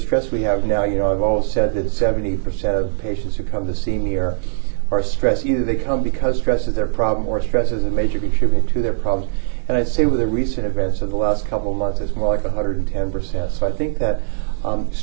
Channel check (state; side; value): silent; left; digital silence